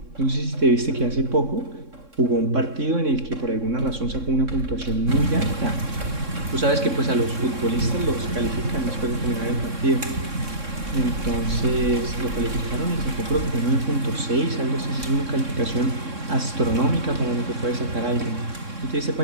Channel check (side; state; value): left; late; 3.6 ms